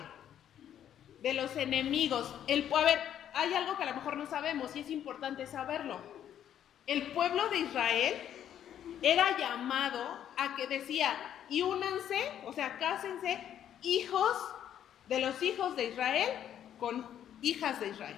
de los enemigos. A ver, hay algo que a lo mejor no sabemos y es importante saberlo. El pueblo de Israel era llamado a que decía, y únanse, o sea, cásense, hijos de los hijos de Israel con hijas de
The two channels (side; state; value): right; quieter; 10.2 dB